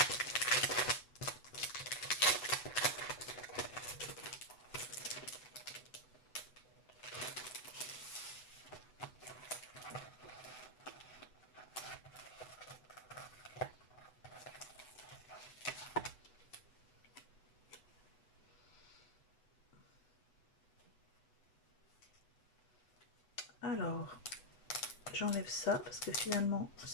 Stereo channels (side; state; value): right; late; 8.1 ms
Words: Alors, j'enlève ça parce que finalement,